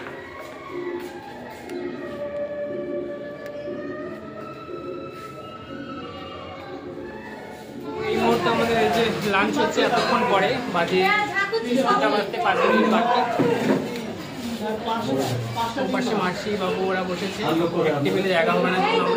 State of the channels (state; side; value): identical; both; correlation 1.00